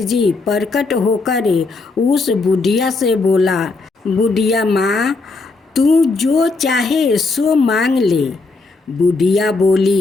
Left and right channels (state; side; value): quieter; right; 3.7 dB